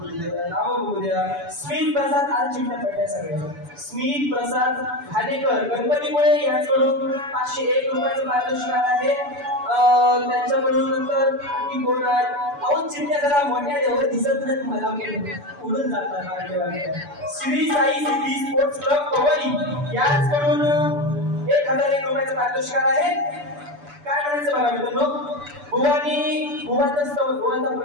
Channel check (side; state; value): left; late; 6.9 ms